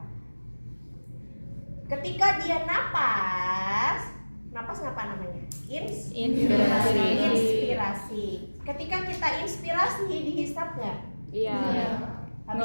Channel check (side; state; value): both; inverted; correlation -1.00